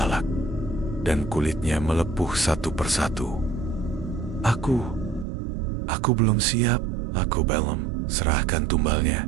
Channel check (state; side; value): drops out; left; at 5.2 s